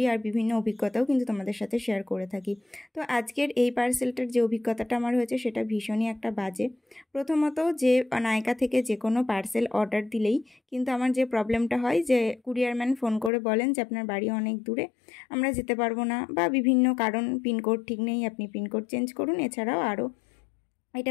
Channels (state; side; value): drops out; right; at 13.3 s